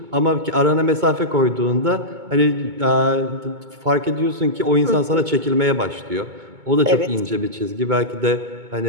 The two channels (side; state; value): left; late; 2.2 ms